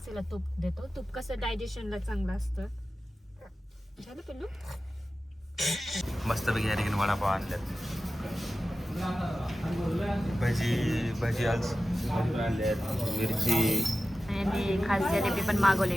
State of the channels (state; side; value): normal; both; correlation 0.94